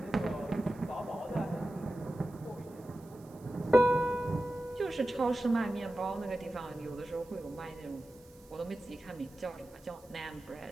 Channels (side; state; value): right; noise; hiss, 26 dB below the sound